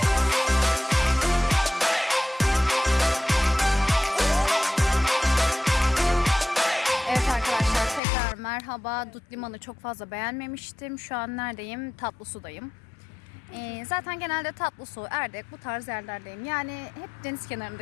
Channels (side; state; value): right; drops out; at 8.0 s